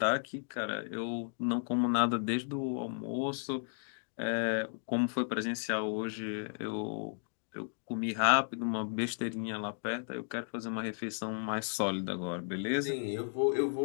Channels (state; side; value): silent; right; digital silence